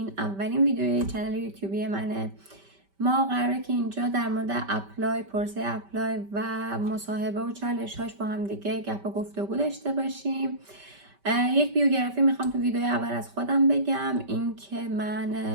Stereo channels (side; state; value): left; late; 5.1 ms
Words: اولین ویدیوی کانال یوتیوبی منه. ما قراره که اینجا در مورد اپلای، پروسه اپلای و مصاحبه و چالش‌هاش با هم دیگه گپ و گفتگو داشته باشیم. یک بیوگرافی میخوام تو ویدیو اول از خودم بگم، این که من